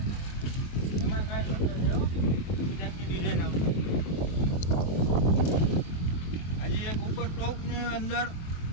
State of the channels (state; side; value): late; right; 23 ms